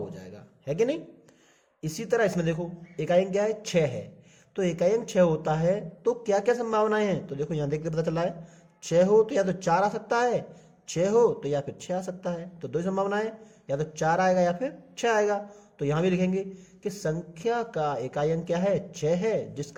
जाएगा, है कि नहीं। इसी तरह इसमें देखो इकाई अंक क्या है? 6 है। तो इकाई अंक 6 होता है तो क्या क्या संभावनाएं हैं? तो देखो यहां देख के पता चला है, 6 हो तो या तो 4 आ सकता है, 6 हो तो या फिर 6 आ सकता है। तो 2 संभावनाएं, या तो 4 आएगा या फिर 6 आएगा। तो यहां भी लिखेंगे कि संख्या का इकाई अंक क्या है? 6 है।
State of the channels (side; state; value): both; identical; correlation 1.00